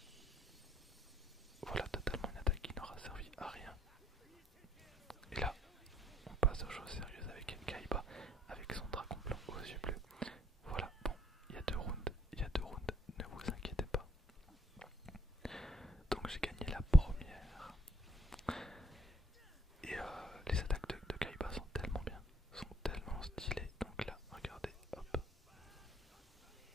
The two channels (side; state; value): both; normal; correlation 0.68